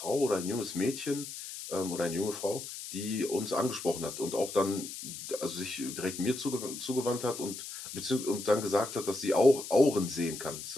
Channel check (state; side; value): noise; left; hiss, 9 dB below the sound